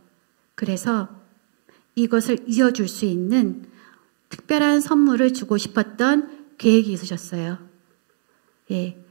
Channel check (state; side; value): silent; left; digital silence